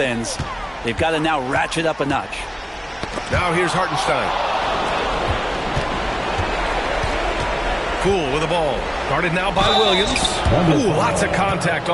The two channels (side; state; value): both; identical; correlation 1.00